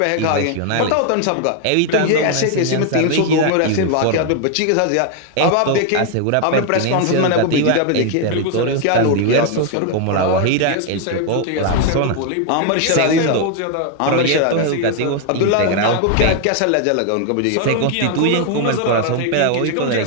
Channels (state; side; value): different; both; correlation 0.01